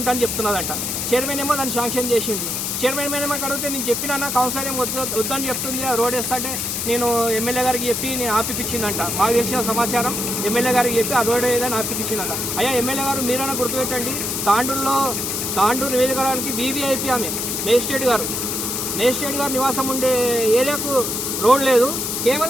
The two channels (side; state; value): left; noise; hiss, 2 dB below the sound